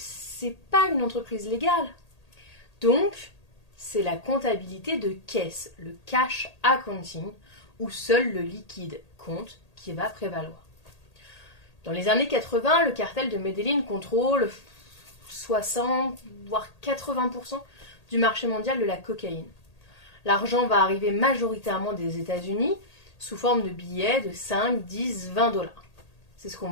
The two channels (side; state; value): right; late; 1.8 ms